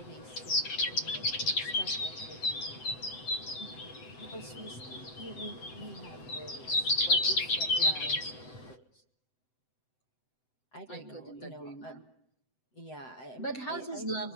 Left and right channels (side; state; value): right; late; 7.9 ms